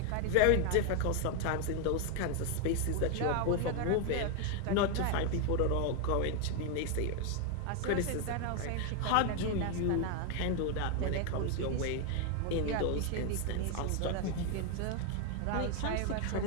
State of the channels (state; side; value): different; both; correlation 0.01